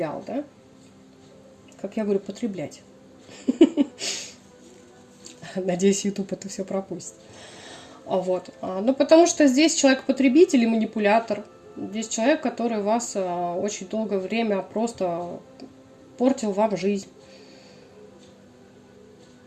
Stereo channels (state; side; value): identical; both; correlation 1.00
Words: да? Как я говорю, потреблять. Надеюсь, YouTube это все пропустит. Вот. Ну, потому что здесь человек-потребитель и манипулятор. Здесь человек, который вас очень долгое время просто портил вам жизнь.